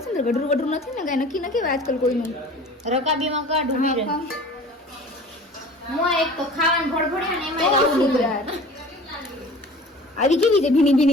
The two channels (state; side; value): normal; both; correlation 0.43